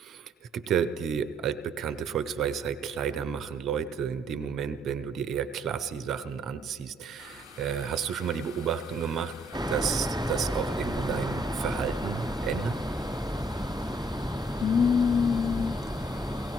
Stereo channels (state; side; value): normal; both; correlation 0.65